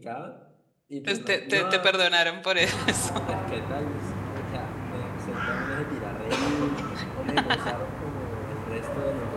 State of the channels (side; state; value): both; identical; correlation 1.00